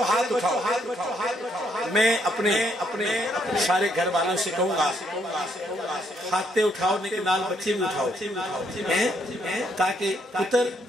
ہاتھ اٹھاؤ، میں اپنے سارے گھر والوں سے کہوں گا ہاتھے اٹھاؤ، لیکن نال بچے بھی اٹھاؤ، تاکہ پتر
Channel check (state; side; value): normal; both; correlation 0.72